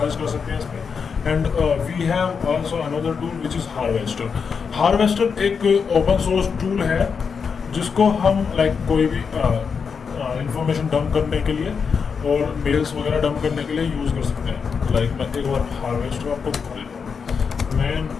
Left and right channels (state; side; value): quieter; right; 5.9 dB